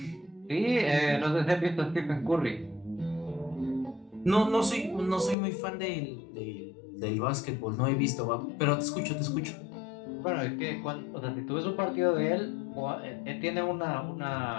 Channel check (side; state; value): right; drops out; at 5.4 s